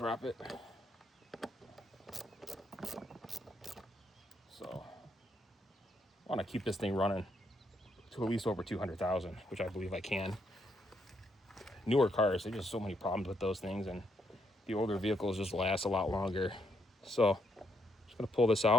it. So I want to keep this thing running to at least over 200,000, which I believe I can. Newer cars, there's just so many problems with those things, and the older vehicles just last a lot longer. So I'm just going to pull this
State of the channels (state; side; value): normal; both; correlation 0.76